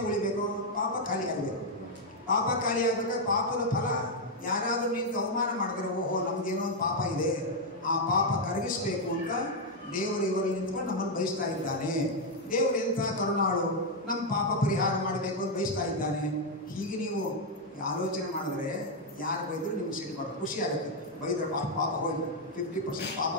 ಉಳಿಬೇಕು, ಪಾಪ ಖಾಲಿ ಆಗಬೇಕು. ಪಾಪ ಖಾಲಿ ಆಗಬೇಕಾದ್ರೆ ಪಾಪದ ಫಲ ಯಾರಾದರೂ ನಿಂತು ಅವಮಾನ ಮಾಡಿದ್ರೆ, ಓಹೋ ನಮ್ದೇನೋ ಒಂದು ಪಾಪ ಇದೆ, ಆ ಪಾಪ ಕರಗಿಸ್ಬೇಕು ಅಂತ ದೇವರು ಇವರಲ್ಲಿ ನಿಂತ್ಕೊಂಡು ನಮ್ಮನ್ನು ಬಯಸ್ತಾ ಇದ್ದಾನೆ. ದೇವರು ಎಂಥ ಕರುಣಾಳು, ನಮ್ಮ ಪಾಪ ಪರಿಹಾರ ಮಾಡಬೇಕು ಅಂತ ಬಯಸ್ತಾ ಇದ್ದಾನೆ. ಹೀಗೆ ನೀವು ಆಲೋಚನೆ ಮಾಡಿದ್ರೆ ಯಾರು ಬೈದರೂ ನಿಮ್ಗೆ ಸಿಟ್ಟು ಬರೋದು, ಖುಷಿ ಆಗುತ್ತೆ. ಬೈದ್ರೆ ಪಾಪ ಹೋಯ್ತು, 50% ಪಾಪ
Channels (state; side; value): normal; both; correlation 0.00